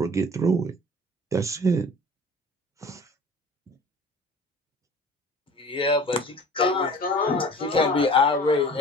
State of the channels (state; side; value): normal; both; correlation 0.44